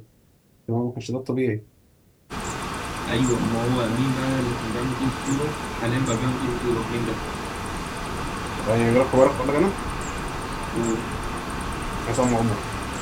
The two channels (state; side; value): identical; both; correlation 1.00